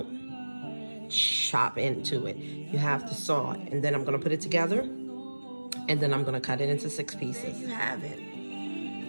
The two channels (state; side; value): inverted; both; correlation -1.00